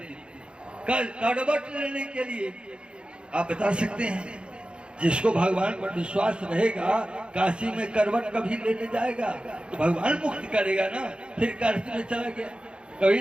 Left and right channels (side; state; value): left; late; 0.055 ms